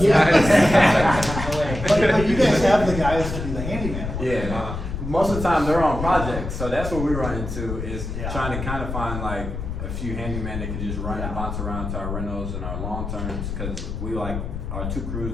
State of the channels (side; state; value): left; noise; rumble, 6 dB below the sound